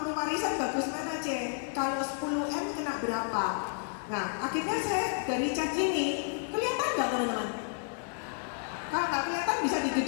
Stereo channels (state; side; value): silent; right; 57 dB below the other